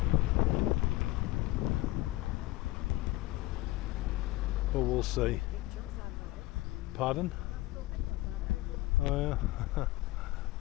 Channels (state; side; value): quieter; right; 18.1 dB